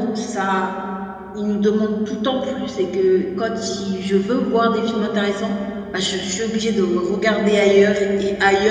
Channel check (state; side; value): identical; both; correlation 1.00